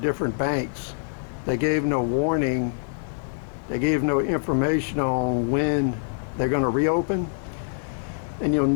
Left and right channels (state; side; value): silent; right; digital silence